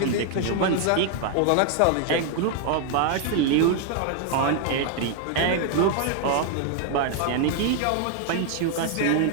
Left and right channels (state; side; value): different; both; correlation 0.00